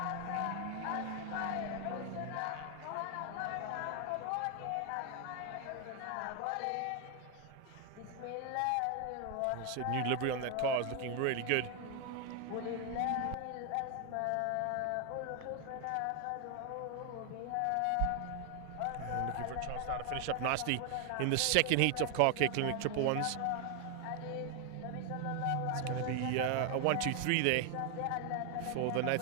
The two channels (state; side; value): different; both; correlation 0.00